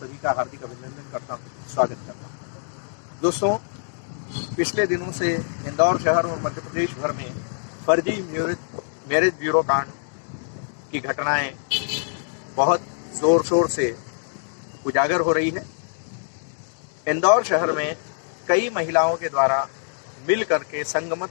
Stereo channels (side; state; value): right; silent; digital silence